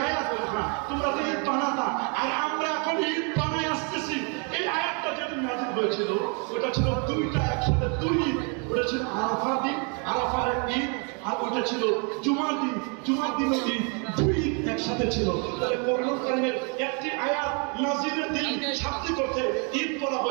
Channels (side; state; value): left; quieter; 36.6 dB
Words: আয়াত না তোমরা তো ঈদ বানাতা আর আমরা এখন ঈদ বানাই আসতেছি। এই আয়াতটা যেদিন নাযিল হয়েছিল ওটা ছিল দুইটা একসাথে দুই ঈদ। ওটা ছিল আরাফার দিন, আরাফার ঈদ, আর ওটা ছিল জুমার দিন, জুমার দিনের ঈদ। দুই ঈদ একসাথে ছিল। তাহলে কোরআন কারীমের একটি আয়াত নাযিলের দিন শাব্দিক অর্থে ঈদ বলা